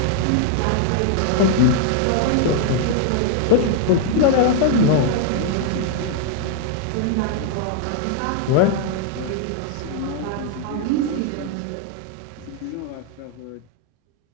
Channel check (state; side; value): different; both; correlation 0.00